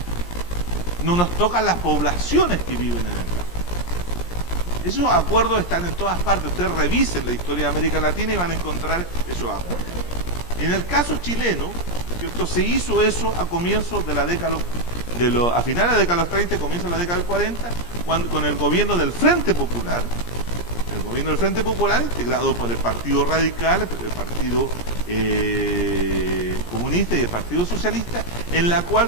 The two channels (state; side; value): late; right; 17 ms